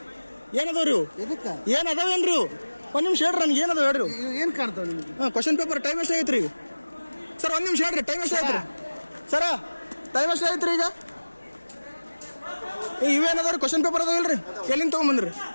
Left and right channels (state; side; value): inverted; both; correlation -1.00